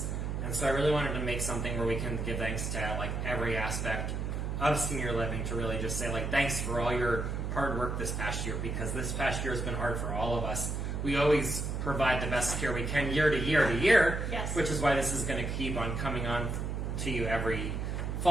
And so I really wanted to make something where we can give thanks to like every aspect of senior living, to really just say like thanks for all your hard work this past year, because this past year has been hard for all of us. We always provide the best care we can year to year to year, yes. Which is why this is going to keep on coming on to you every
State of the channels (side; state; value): right; noise; hum, 2 dB below the sound